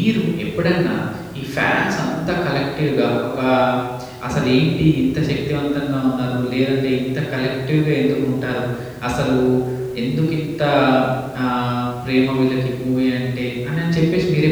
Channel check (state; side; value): identical; both; correlation 1.00